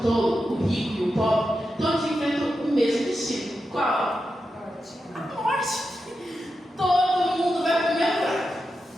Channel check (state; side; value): normal; both; correlation 0.89